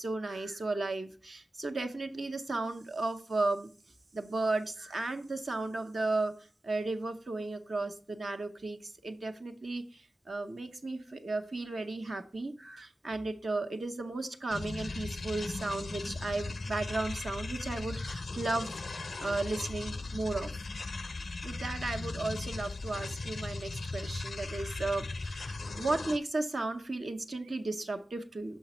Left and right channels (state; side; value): normal; both; correlation 0.93